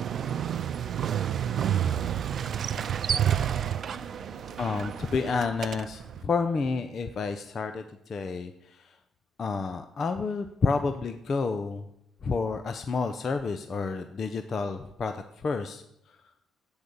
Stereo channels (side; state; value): both; normal; correlation 0.72